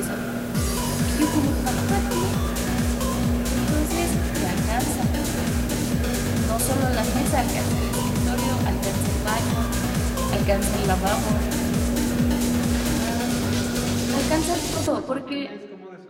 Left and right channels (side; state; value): both; identical; correlation 1.00